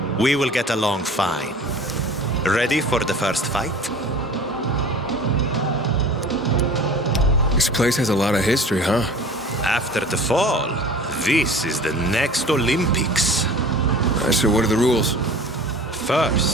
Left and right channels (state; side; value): normal; both; correlation 0.42